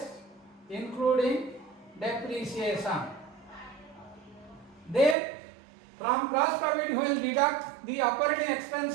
including depreciation. Then from gross profit we will deduct the operating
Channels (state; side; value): drops out; left; at 5.2 s